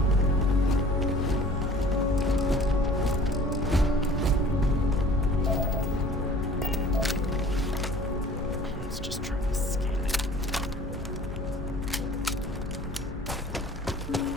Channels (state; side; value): normal; both; correlation 0.49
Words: Let's just try to scan it.